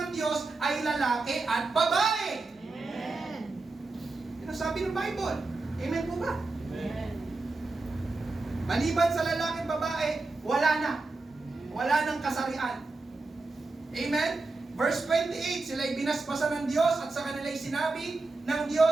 Diyos ay lalaki at babae. Amen. Yan ang sabi ng Bible. Amen po ba? Amen. Maliban sa lalaki at babae, wala na. Wala nang kasarian. Amen? Verse 28, sila'y binasbasan ng Diyos at sa kanila'y sinabi ng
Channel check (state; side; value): quieter; left; 3.5 dB